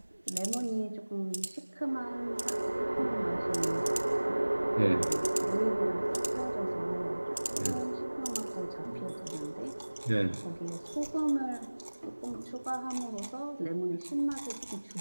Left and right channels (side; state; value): both; inverted; correlation -1.00